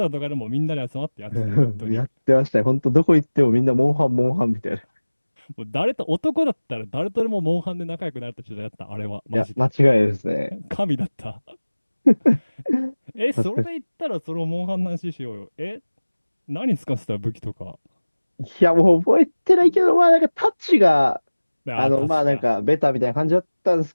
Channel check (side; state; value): both; inverted; correlation -1.00